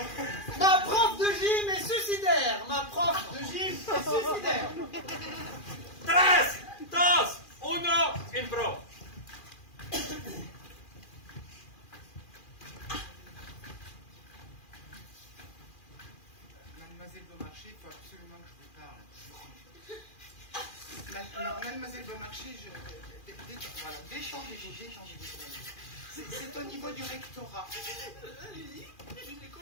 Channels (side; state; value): right; late; 2.4 ms